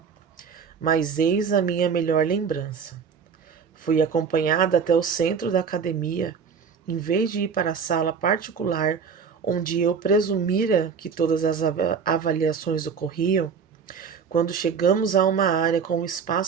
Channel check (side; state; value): left; quieter; 6.2 dB